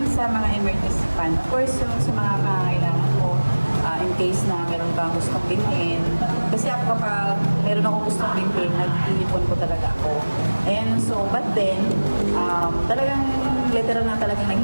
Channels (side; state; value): both; inverted; correlation -1.00